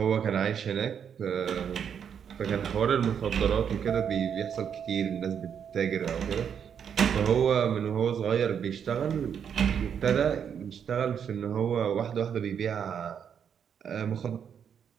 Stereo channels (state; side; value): quieter; left; 7.9 dB